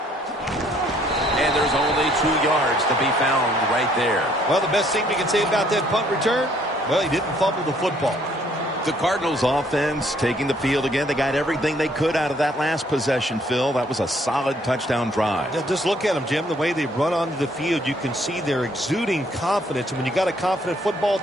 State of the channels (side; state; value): both; normal; correlation 0.64